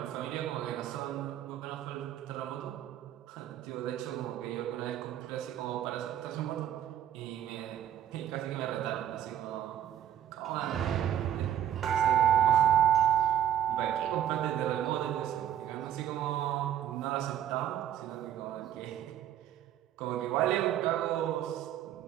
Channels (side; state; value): left; quieter; 10.8 dB